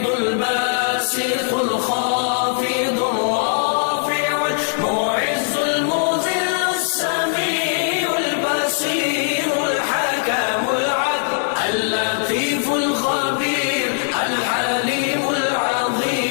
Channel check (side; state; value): right; silent; digital silence